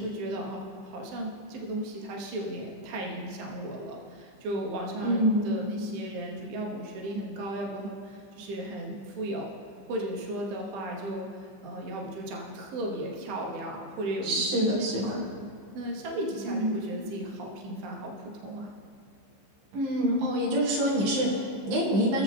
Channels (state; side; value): late; left; 15 ms